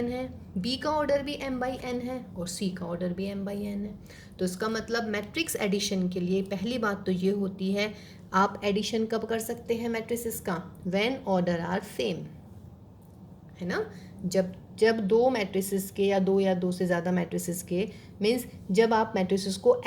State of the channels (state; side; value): identical; both; correlation 1.00